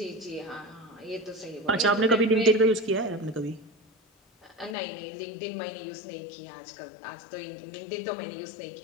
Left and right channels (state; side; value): drops out; right; at 4.8 s